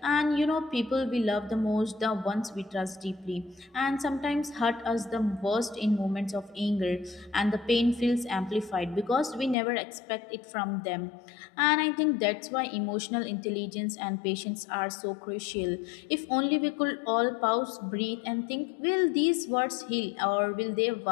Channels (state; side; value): drops out; right; at 9.6 s